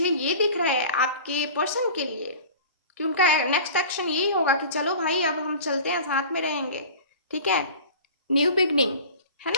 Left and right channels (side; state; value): both; inverted; correlation -0.39